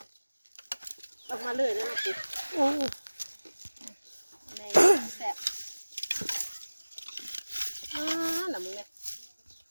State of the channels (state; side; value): inverted; both; correlation -1.00